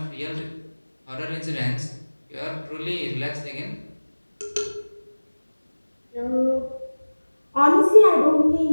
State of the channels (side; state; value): both; inverted; correlation -1.00